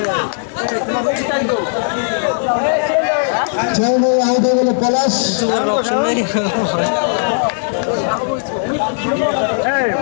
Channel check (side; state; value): right; silent; 69 dB below the other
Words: চাইলে আউট হয়ে গেল পলাশ।